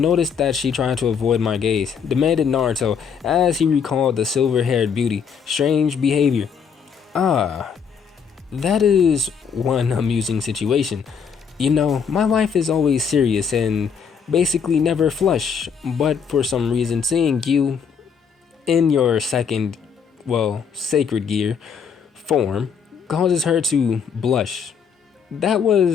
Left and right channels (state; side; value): quieter; right; 6.7 dB